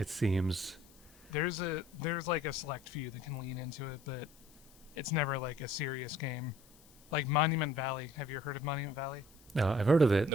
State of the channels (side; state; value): left; noise; hiss, 26 dB below the sound